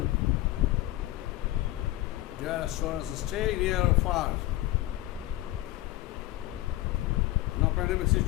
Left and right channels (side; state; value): right; quieter; 16.7 dB